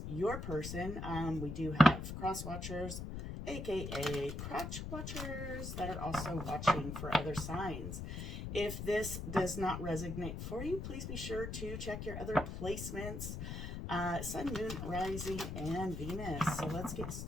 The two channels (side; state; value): left; noise; rumble, 6 dB below the sound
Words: your person. We do have cross watchers, aka crotch watchers, that are also watching for other signs. If this does not resonate for you, please be sure to check your other placements. Sun, Moon, Rising, and Venus. So let's get